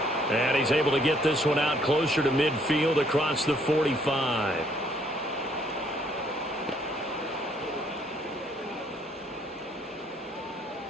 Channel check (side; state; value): both; normal; correlation 0.66